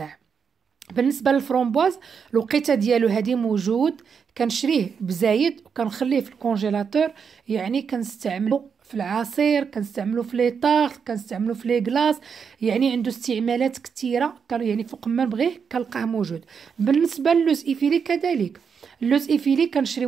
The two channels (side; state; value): left; quieter; 6.4 dB